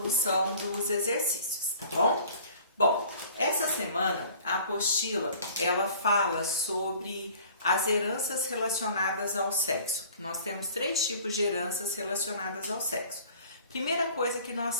dos exercícios, tá bom? Bom, essa semana a apostila, ela fala sobre as heranças relacionadas ao sexo. Nós temos 3 tipos de heranças relacionadas ao sexo. Primeira coisa que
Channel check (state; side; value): inverted; both; correlation -0.49